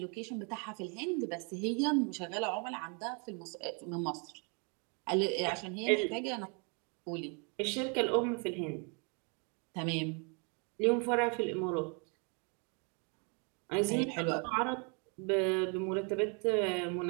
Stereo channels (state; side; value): quieter; left; 36.1 dB